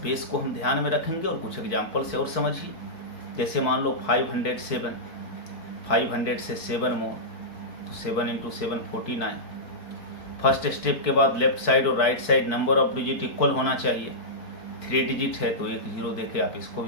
बेस को हम ध्यान में रखेंगे और कुछ एग्जाम्पल से और समझिए। जैसे मान लो 507, 500 से 7 मोर, तो 7 इंटू 7 49। फर्स्ट स्टेप के बाद लेफ्ट साइड और right side number of digit equal होना चाहिए। 3 डिजिट है तो 1 जीरो देके आप इसको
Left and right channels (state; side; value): late; right; 4.6 ms